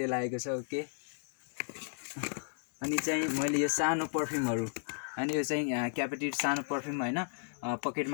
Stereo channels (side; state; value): right; silent; digital silence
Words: आएको छ, ओके। अनि चाहिँ मैले यो सानो पर्फ्युमहरू, अनि यो चाहिँ क्यापेटिभ सानो पर्फ्युम होइन,